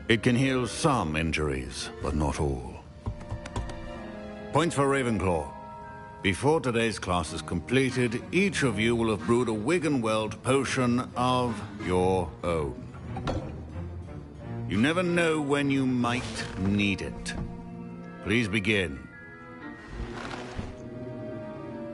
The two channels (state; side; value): identical; both; correlation 1.00